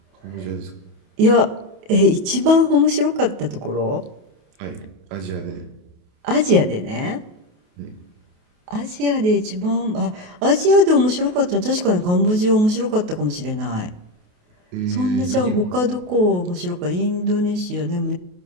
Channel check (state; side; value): late; left; 28 ms